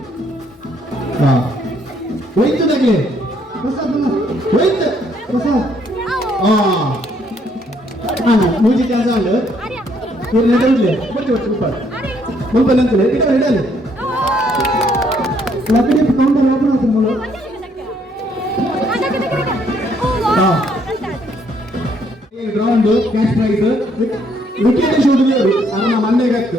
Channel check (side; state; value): both; normal; correlation 0.68